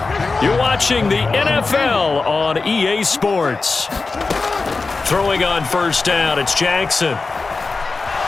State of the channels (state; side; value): quieter; right; 4.0 dB